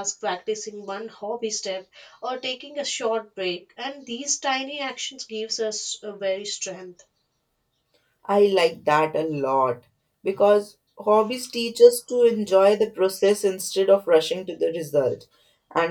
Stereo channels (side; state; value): both; identical; correlation 1.00